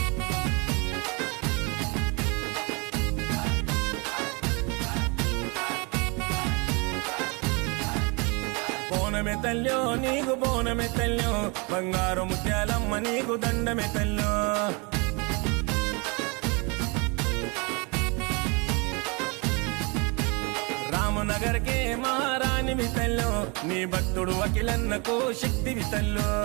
బోనమే తల్లో నీకు బోనమే తల్లో బంగారు ముత్యాలమ్మ నీకు దండమే తల్లో రామనగర్ కే మహారాణి వితల్లో నీ భక్తుడు అఖిలన్నకు శక్తి వితల్లో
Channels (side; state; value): left; quieter; 30.2 dB